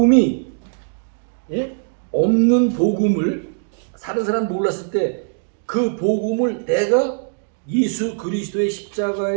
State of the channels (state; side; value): silent; left; digital silence